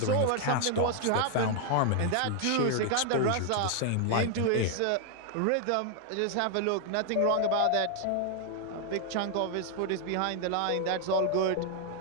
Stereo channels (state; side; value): different; both; correlation 0.00